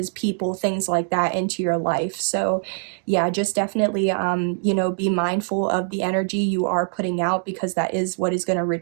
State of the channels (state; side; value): silent; left; 63 dB below the other